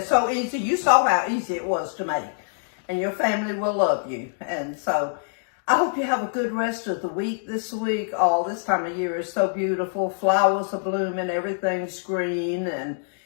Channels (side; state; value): right; silent; digital silence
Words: so easy. You saw how easy it was to make. And your family will love you. And so I hope you have a good rest of the week this week. Oh, this time of year is so beautiful. Flowers are blooming, everything's green, and